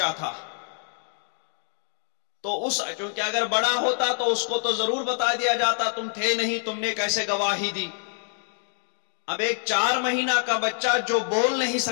تھا، تو چونکہ اگر بڑا ہوتا تو اس کو تو ضرور بتا دیا جاتا، تم تھے نہیں، تم نے کیسے گواہی دی۔ اب ایک 4 مہینہ کا بچہ جو بول نہیں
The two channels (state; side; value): silent; right; digital silence